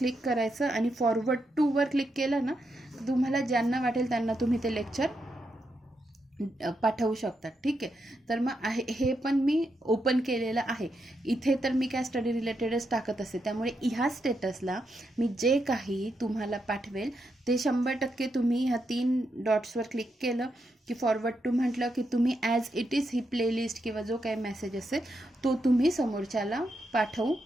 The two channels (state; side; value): normal; both; correlation 0.83